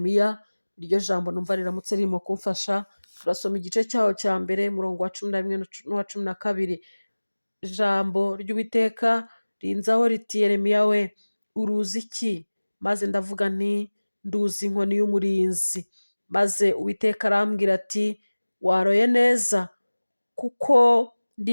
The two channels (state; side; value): inverted; both; correlation -1.00